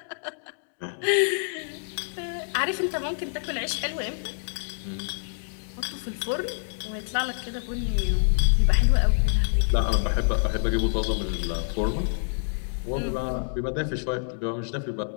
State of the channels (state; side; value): silent; right; digital silence